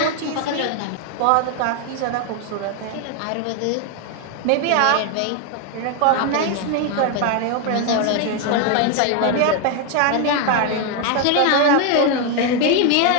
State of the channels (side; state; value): both; different; correlation 0.01